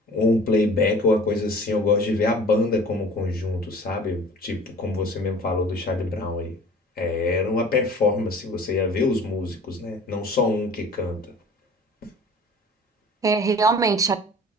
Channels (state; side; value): normal; both; correlation 0.45